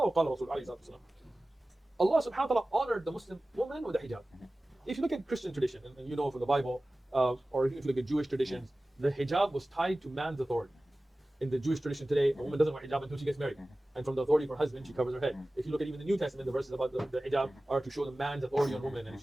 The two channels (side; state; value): both; normal; correlation 0.97